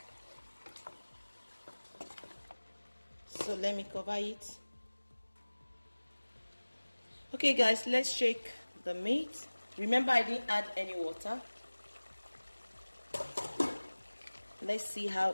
So let me cover it. Okay guys, let's shake the meat. Remember, I didn't add any water. Let's see how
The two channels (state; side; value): inverted; both; correlation -1.00